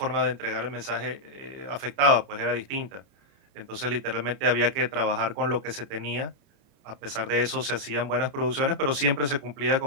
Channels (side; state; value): left; late; 29 ms